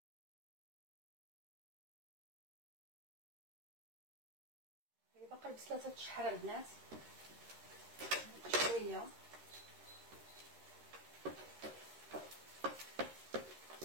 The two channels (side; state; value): left; late; 13 ms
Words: البصله تتشحر البنات شويه.